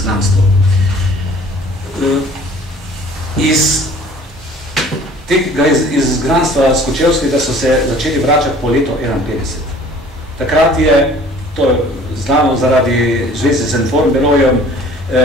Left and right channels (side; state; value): both; normal; correlation 0.51